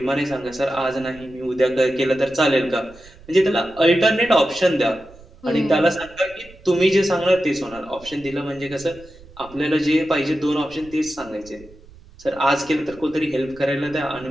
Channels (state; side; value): noise; right; rumble, 23 dB below the sound